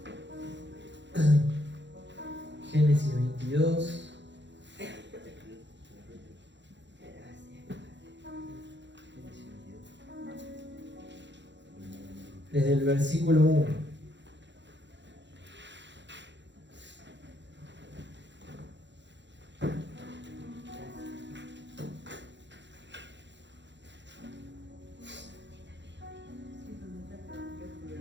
Génesis 22. Desde el versículo 1.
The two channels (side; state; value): left; late; 0.52 ms